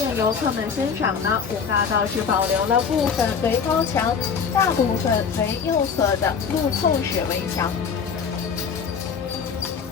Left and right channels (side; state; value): right; quieter; 6.2 dB